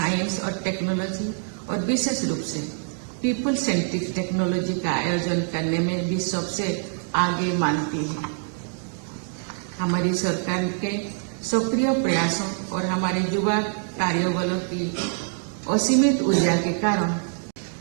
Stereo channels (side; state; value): left; silent; 58 dB below the other